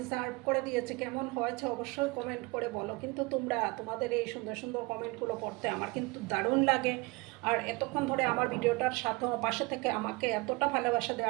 সার্ভ করে দিয়েছি। কেমন হয়েছে অবশ্যই কমেন্ট করে বলো। কিন্তু তোমাদের এই সুন্দর সুন্দর কমেন্টগুলো পড়তে আমার কিন্তু দারুণ লাগে। আর এতক্ষণ ধরে আমার ভিডিওটার সাথে পাশে থেকে আমাকে এতটা ভালোবাসা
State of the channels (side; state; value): left; quieter; 25.1 dB